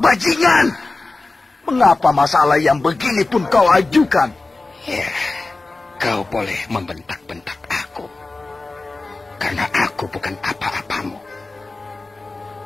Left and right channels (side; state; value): right; quieter; 3.3 dB